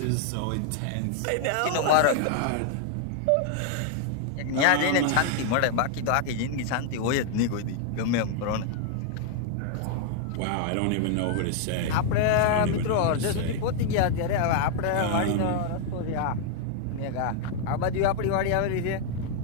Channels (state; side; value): different; both; correlation 0.00